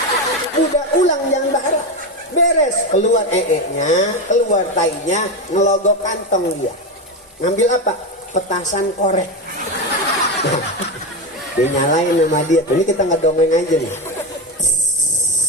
Udah ulang yang baru. Beres, keluar nya, keluar tainya, ngelogok kantong dia. Ngambil apa? Petasan korek. Dinyalain sama dia. Ini kita ngedongeng aja nih.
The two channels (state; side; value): normal; both; correlation 0.15